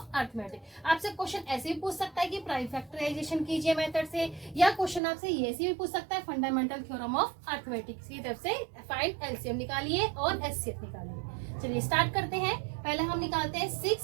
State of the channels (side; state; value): left; drops out; at 5.0 s